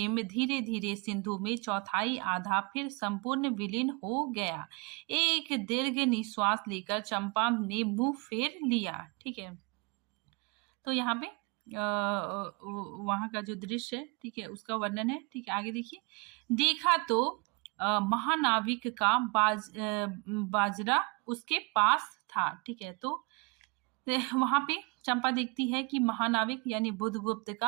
धीरे धीरे सिंधु में चौथाई आधा फिर संपूर्ण विलीन हो गया। एक दीर्घ निश्वास लेकर चंपा ने मुंह फेर लिया, ठीक है। तो यहाँ पे वहां का जो दृश्य है, ठीक है, उसका वर्णन है, ठीक है। आगे देखिए, देखा तो महानाविक का बाजरा उसके पास था, ठीक है। तो वहां पे चंपा देखती है कि महानाविक यानी बुधगुप्त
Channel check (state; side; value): quieter; left; 29.6 dB